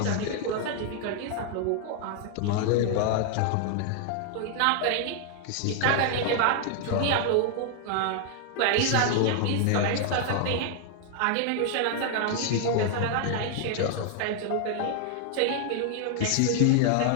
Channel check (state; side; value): different; both; correlation 0.00